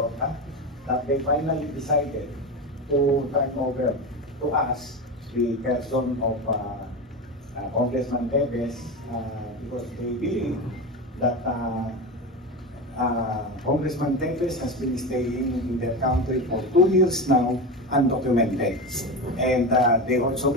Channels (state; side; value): normal; both; correlation 0.21